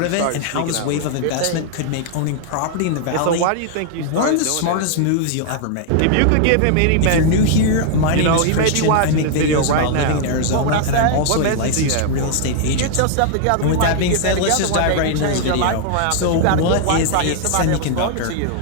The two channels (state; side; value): different; both; correlation 0.00